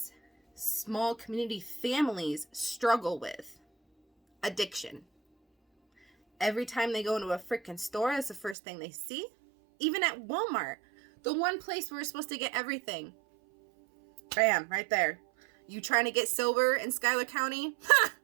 small community families struggle with? Addiction. Every time they go into a freaking store, it's the first thing they see. Even at Walmart, the one place where we're supposed to get everything. Bam, right there. You trying to get silver in Schuyler County? Ha!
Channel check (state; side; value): drops out; left; at 8.6 s